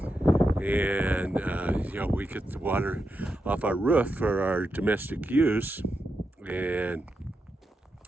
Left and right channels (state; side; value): normal; both; correlation 0.86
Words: And we get the water off our roof for our domestic use, and